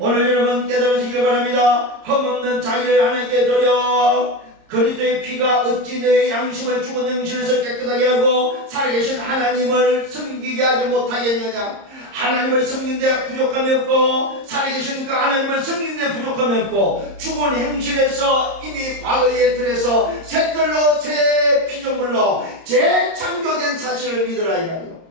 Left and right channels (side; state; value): left; late; 30 ms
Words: 여러분 깨달으시길 바랍니다. 흠없는 자기를 하나님께 드려 그리스도의 피가 어찌 내 양심을 죽은 영신에서 깨끗하게 하고 살아계신 하나님을 섬기게 하지 못하겠느냐. 하나님을 섬기는데 부족함이 없고 살아계신 그 하나님을 섬기는데 부족함이 없고 죽은 행실에서 이미 과거의 틀에서 새 털로 새 피조물로 재창조된 사실을 믿으라 이 말이에요.